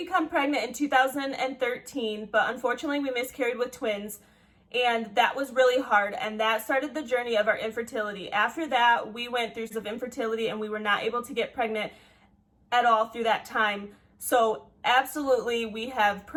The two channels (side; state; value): both; identical; correlation 1.00